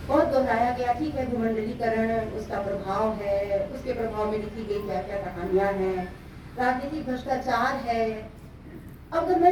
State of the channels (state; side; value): identical; both; correlation 1.00